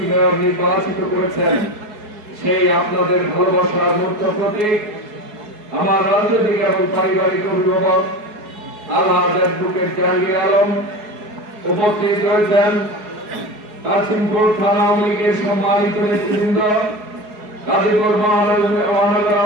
মেয়র নির্বাচিত করেছেন। সেই আপনাদের ভালোবাসার মূর্ত প্রতীক আমার রাজনৈতিক এবং পারিবারিক অভিভাবক আলহাজ অ্যাডভোকেট জাহাঙ্গীর আলম উপস্থিত রয়েছেন। কাশিমপুর থানা আওয়ামী লীগের সম্মানিত নেতৃবৃন্দ, গাজীপুর মহানগর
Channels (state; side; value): late; left; 4.7 ms